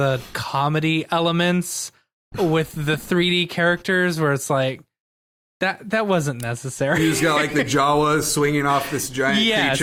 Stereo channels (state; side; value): identical; both; correlation 1.00